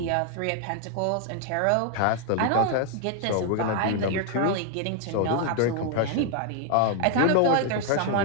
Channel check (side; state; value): both; different; correlation 0.00